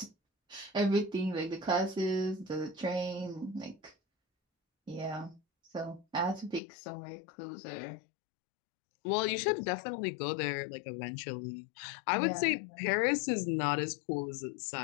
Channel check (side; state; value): right; drops out; at 6.6 s